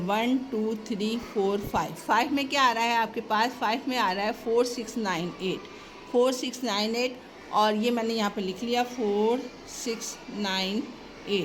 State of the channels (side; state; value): both; identical; correlation 1.00